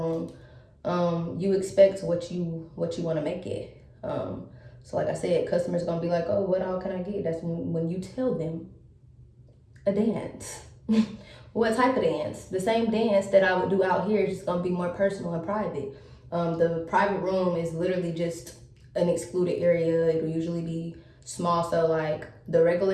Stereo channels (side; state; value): both; identical; correlation 1.00